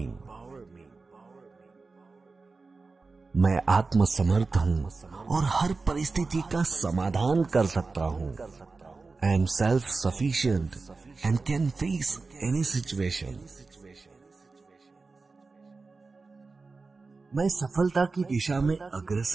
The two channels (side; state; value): left; quieter; 4.0 dB